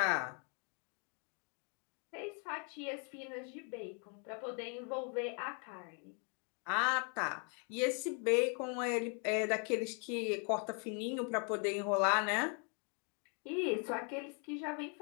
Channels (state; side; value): quieter; right; 39.0 dB